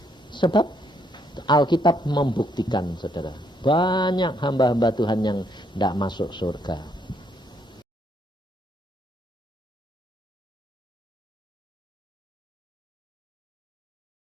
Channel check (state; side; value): normal; both; correlation 0.72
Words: Sebab Alkitab membuktikan saudara, banyak hamba-hamba Tuhan yang tidak masuk surga.